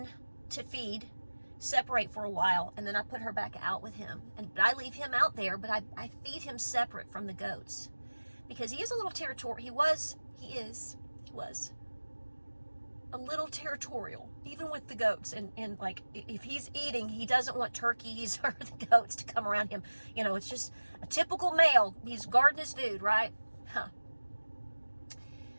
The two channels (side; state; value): both; inverted; correlation -1.00